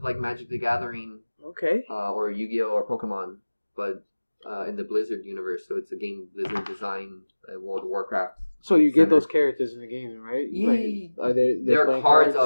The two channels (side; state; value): both; inverted; correlation -1.00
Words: like Magic the Gathering, Okay. or Yu-Gi-Oh or Pokemon, but in the Blizzard universe. So it's a game Blizzard designed, World of Warcraft. So you get Center. those characters in the game, right? Yeah. Like, are they? There are cards